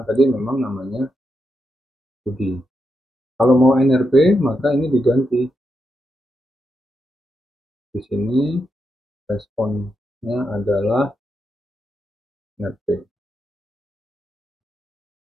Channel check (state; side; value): normal; both; correlation 0.84